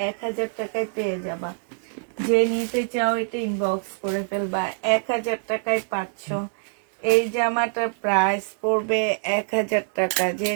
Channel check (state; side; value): silent; left; 62 dB below the other